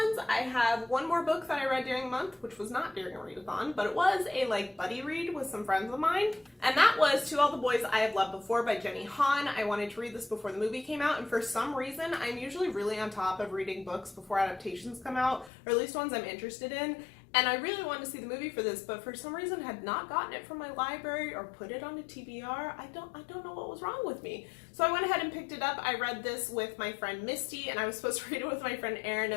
I have one more book that I read during the month, which was not during a readathon, but it was a buddy read with some friends of mine. And that was To All the Boys I Have Loved Before by Jenny Han. I wanted to read this before the movie came out, and for some reason, I'm usually really on top of reading books before adaptations come out, or at least ones I'm interested in. And I really wanted to see the movie for this, but for some reason had not gotten it from my library or put it on a TBR. I don't know what was wrong with me. So I went ahead and picked it up. I read this with my friend Misty, and I was supposed to read it with my friend Erin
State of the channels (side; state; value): right; drops out; at 15.5 s